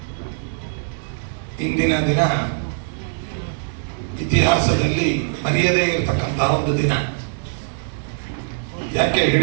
ಇಂದಿನ ದಿನ ಇತಿಹಾಸದಲ್ಲಿ ಮರೆಯದೇ ಇರತಕ್ಕಂತಹ ಒಂದು ದಿನ. ಯಾಕೆ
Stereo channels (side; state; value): left; silent; digital silence